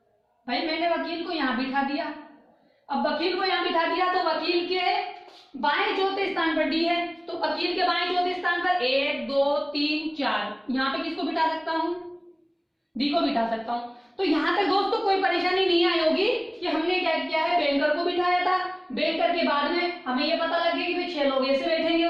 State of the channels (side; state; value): both; identical; correlation 1.00